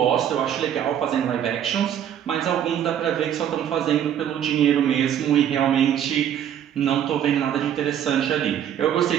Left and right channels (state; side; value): quieter; left; 9.8 dB